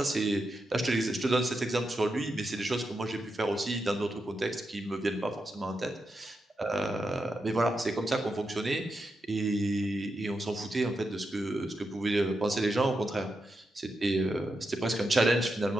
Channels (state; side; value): normal; both; correlation 0.86